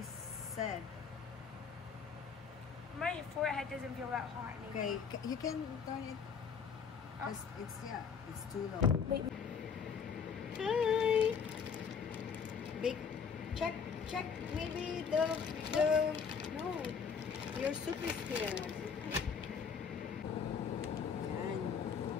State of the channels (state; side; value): quieter; right; 6.3 dB